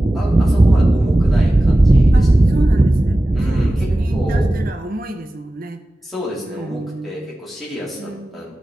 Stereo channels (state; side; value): normal; both; correlation 0.96